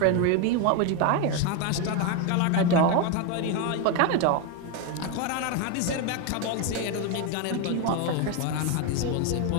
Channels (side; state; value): both; different; correlation 0.02